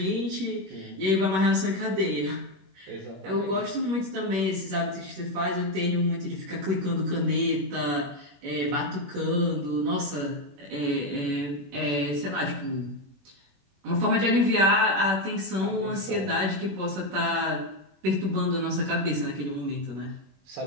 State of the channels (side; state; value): left; late; 21 ms